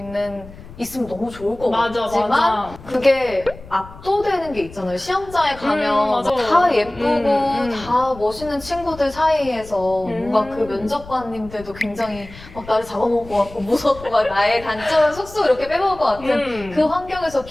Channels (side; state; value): left; noise; rumble, 18 dB below the sound